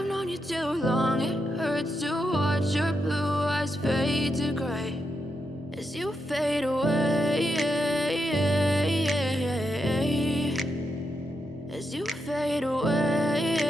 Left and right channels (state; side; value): normal; both; correlation 0.84